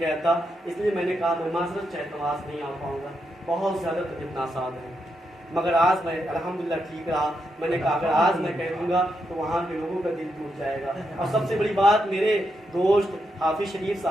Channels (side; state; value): both; normal; correlation 0.83